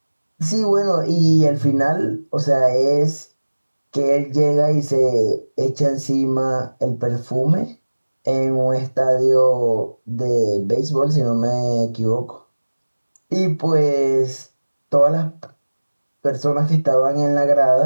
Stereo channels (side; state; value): both; inverted; correlation -1.00